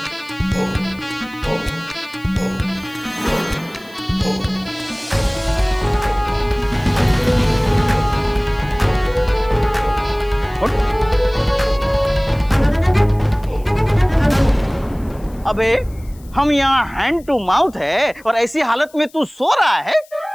उठ। अबे हम यहाँ हैंड टू माउथ है और ऐसी हालत में तू सो रहा है?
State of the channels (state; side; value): noise; left; hiss, 27 dB below the sound